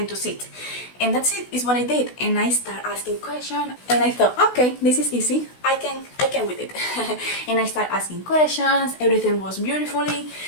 to sit. And that's it, is what I did. And I start asking questions, and I thought, okay, this is easy, I can with it. And I start asking questions, everything was beautifully.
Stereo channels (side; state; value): right; late; 16 ms